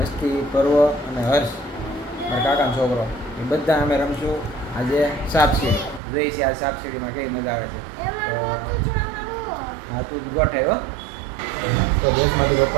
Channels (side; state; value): left; drops out; at 6.0 s